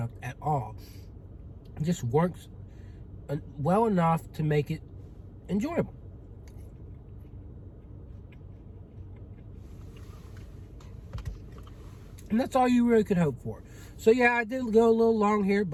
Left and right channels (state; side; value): identical; both; correlation 1.00